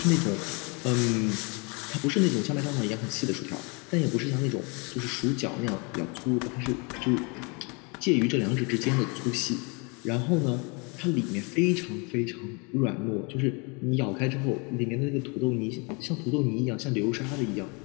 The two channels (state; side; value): quieter; right; 31.5 dB